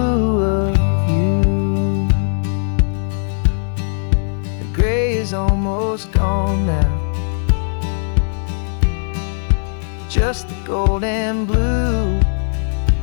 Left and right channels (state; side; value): silent; right; digital silence